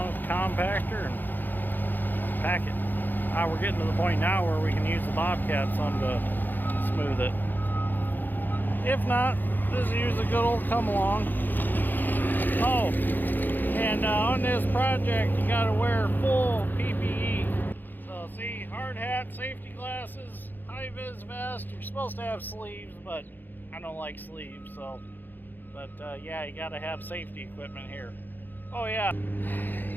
with the compactor and pack it. We're getting to the point now where we can use the Bobcat some to smooth it. If not, just use a good old come along. Oh, and on this project you got to wear full PPE. So see, hard hat, safety glasses, high-vis vest. You're supposed to have sleeves, but I don't like sleeves, so. But yeah, you gotta have safety equipment here. Oh yeah,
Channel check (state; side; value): late; right; 0.089 ms